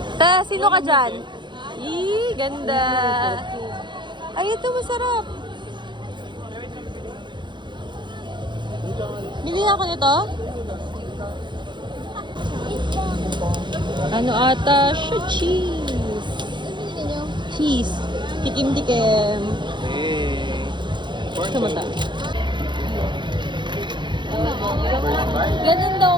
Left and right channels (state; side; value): late; left; 0.23 ms